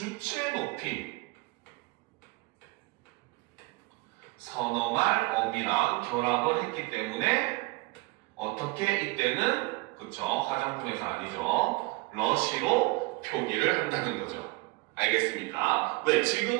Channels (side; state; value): left; quieter; 24.0 dB